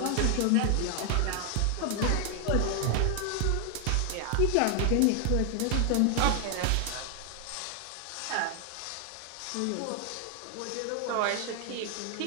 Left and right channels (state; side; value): different; both; correlation 0.00